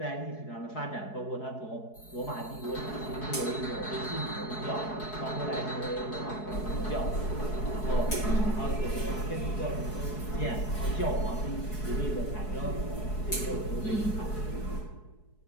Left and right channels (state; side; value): late; right; 4.7 ms